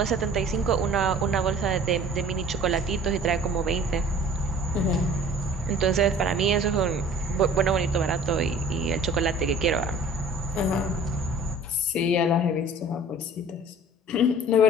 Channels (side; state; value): both; normal; correlation 0.47